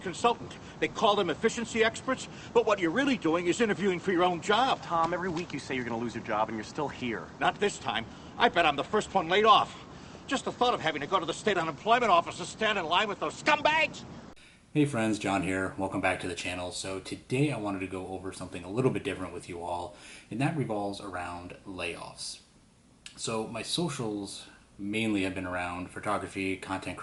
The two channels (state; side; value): identical; both; correlation 1.00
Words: They call them efficiency experts, but what you're really doing is interviewing for your own job. Tom, every week you say you're going to lose your job, and you're still here. Not this time. I bet I'm the first one laid off. Just the thought of having to go to the state unemployment office and stand in line with those scumbags. Hey friends, John here. Welcome back to the channel. So today I wanted to go over something a little bit different with you all, and that revolves around layoffs. So my socials mainly have been around photography, content